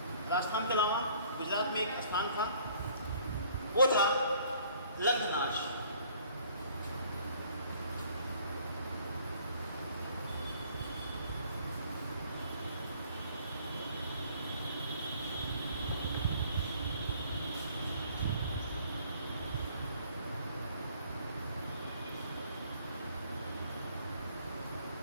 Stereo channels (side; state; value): both; inverted; correlation -0.57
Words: राजस्थान के अलावा गुजरात में एक स्थान था, वो था लंघनाश।